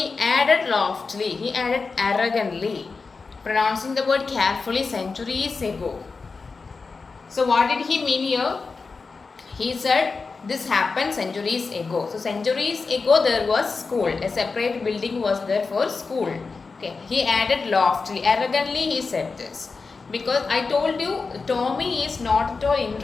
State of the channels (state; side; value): quieter; right; 4.4 dB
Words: added loftily, he added arrogantly. Pronouncing the word carefully, centuries ago. So what did he mean here? He said this happened centuries ago. So centuries ago there was school. A separate building was there for school. Okay. He added loftily. Arrogantly he said this. Because I told you Tommy is not at all